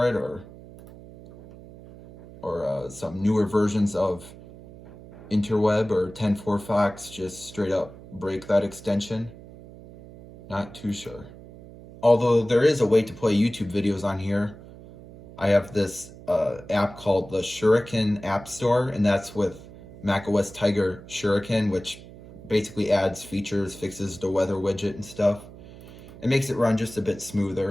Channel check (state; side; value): noise; right; hum, 18 dB below the sound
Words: it or some newer versions of Interweb or 10.4 Fox just straight up break that extension. Not too sure. Although there is a way to play YouTube videos on here. I have this app called the Shuriken App Store, and that's with macOS Tiger Shuriken, which basically adds features, fixes the weather widget and stuff. It makes it run just a bit